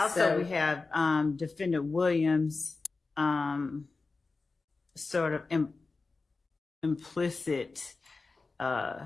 so- we have Defendant Williams' sort of implicit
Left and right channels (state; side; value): quieter; right; 3.9 dB